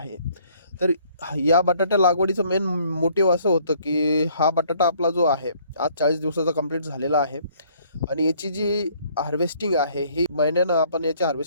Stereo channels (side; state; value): both; inverted; correlation -0.62